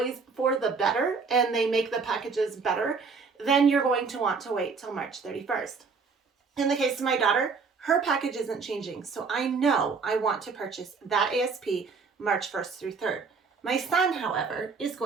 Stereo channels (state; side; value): quieter; left; 5.0 dB